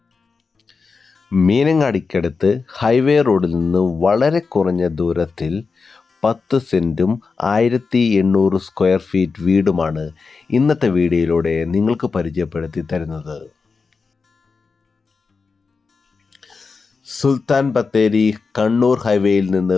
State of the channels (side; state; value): right; quieter; 4.7 dB